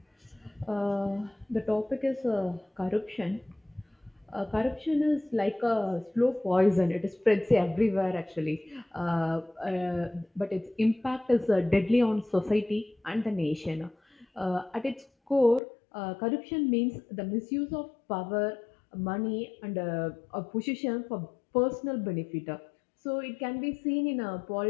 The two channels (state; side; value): drops out; right; at 15.6 s